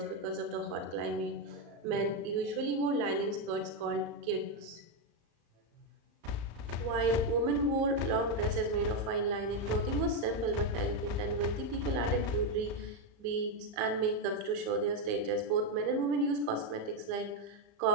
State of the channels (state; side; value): late; left; 35 ms